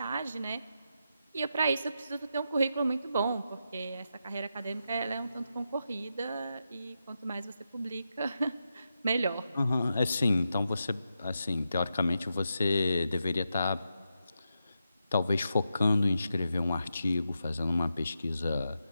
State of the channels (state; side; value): inverted; both; correlation -0.86